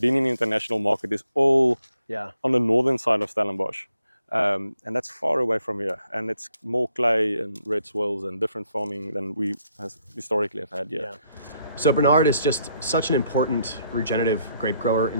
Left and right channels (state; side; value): inverted; both; correlation -0.73